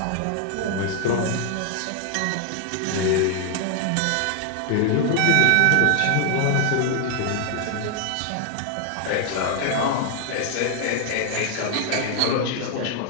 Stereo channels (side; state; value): both; different; correlation 0.00